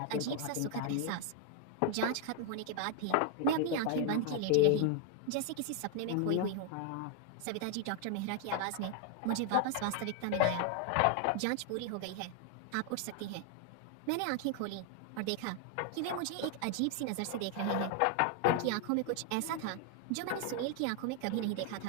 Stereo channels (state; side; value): different; both; correlation 0.00